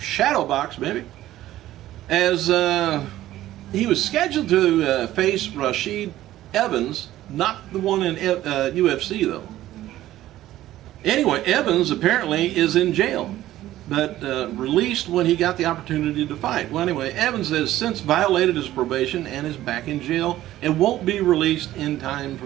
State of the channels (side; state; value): left; quieter; 14.3 dB